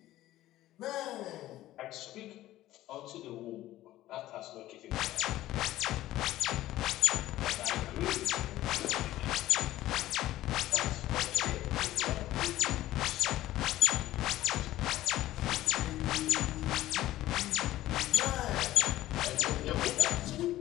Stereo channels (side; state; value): right; quieter; 15.1 dB